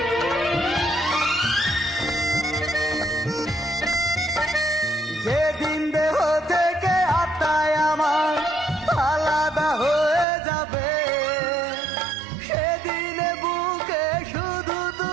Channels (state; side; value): drops out; left; at 10.2 s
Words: যেদিন দেহ থেকে আত্মায় আমার আলাদা হয়ে যাবে, সেদিনে বুকে শুধু